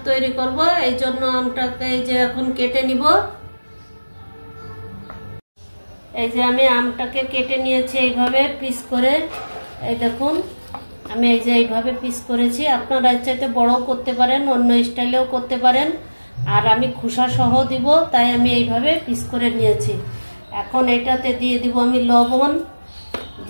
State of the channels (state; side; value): inverted; both; correlation -1.00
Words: তৈরি করব। এই জন্য আমটাকে এই যে এখন কেটে নিব। এই যে আমি আমটাকে কেটে নিয়েছি এইভাবে পিস করে। এই দেখুন, আমি এই যে এইভাবে পিস করেছি। আপনারা চাইতে বড়ও করতে পারেন, অন্য স্টাইলেও করতে পারেন। আর আমি খোসা সহ দিব, তাই আমি এইভাবে পিস করে নিয়েছি। এখন এটাতে দিয়ে দিব আমি লবণ,